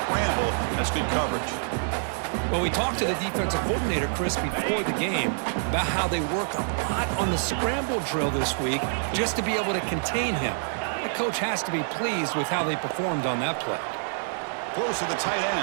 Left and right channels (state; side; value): silent; left; digital silence